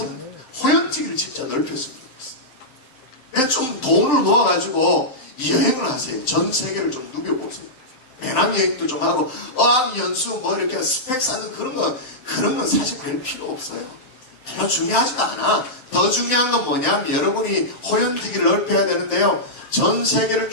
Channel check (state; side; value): late; right; 7.7 ms